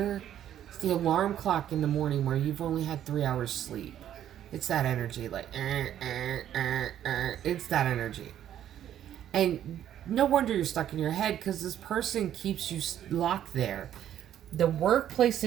It's the alarm clock in the morning where you've only had 3 hours sleep. It's that energy, like, it's that energy. And no wonder you're stuck in your head, because this person keeps you locked there. The workplace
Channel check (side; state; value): left; quieter; 10.8 dB